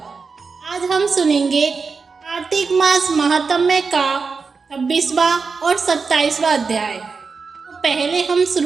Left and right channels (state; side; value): quieter; left; 4.9 dB